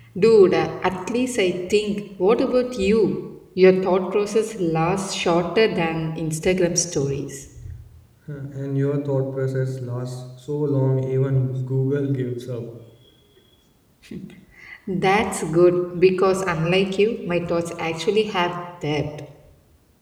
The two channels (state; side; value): identical; both; correlation 1.00